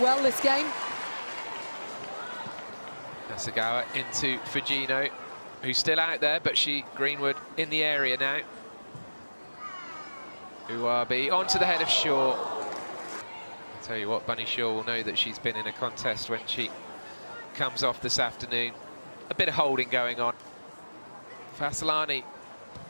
this game. Hasegawa into Fujino, who's still out there, but Greenwood in the area now. Uwabi onto the head of Shaw. I'll tell you what, Bunny Shaw will know that she's been in a contest when she comes off this afternoon. A bit of holding going on. Fasalani.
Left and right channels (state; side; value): inverted; both; correlation -1.00